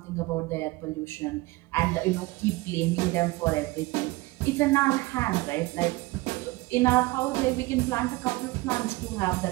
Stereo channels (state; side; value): quieter; left; 21.5 dB